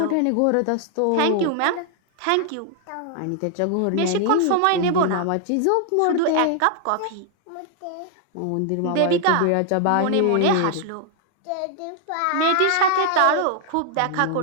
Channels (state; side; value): different; both; correlation 0.00